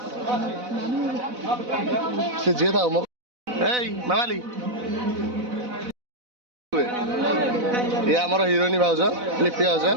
से जे था मामाली ये आमर हिरोइनी भाउज लिपि भाउज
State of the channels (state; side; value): late; left; 4.0 ms